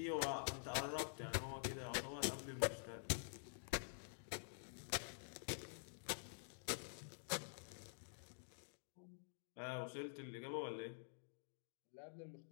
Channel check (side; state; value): right; silent; digital silence